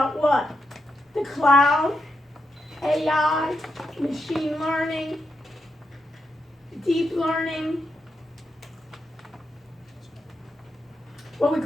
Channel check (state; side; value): normal; both; correlation 0.83